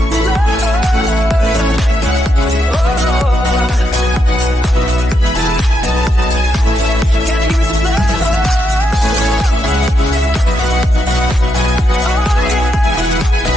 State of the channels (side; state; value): both; normal; correlation 0.81